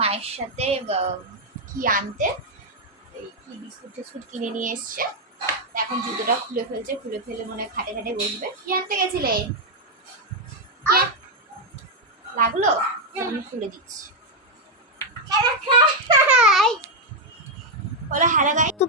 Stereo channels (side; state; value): both; normal; correlation 0.01